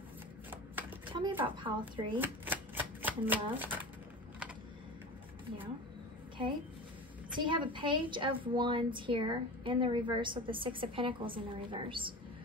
Tell me about pile 3 and love. Yeah, okay. So you have a Page of Wands here in the reverse with the 6 of Pentacles in the reverse.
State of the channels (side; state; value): both; normal; correlation 0.31